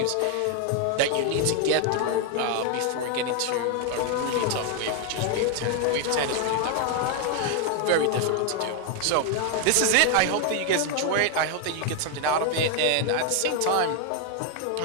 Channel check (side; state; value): both; different; correlation 0.01